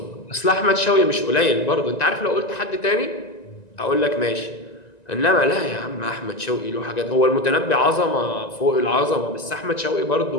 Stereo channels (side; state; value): right; late; 1.9 ms